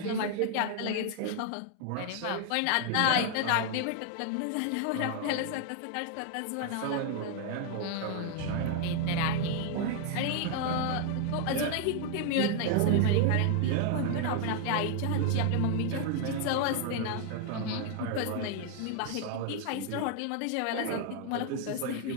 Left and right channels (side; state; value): both; different; correlation 0.00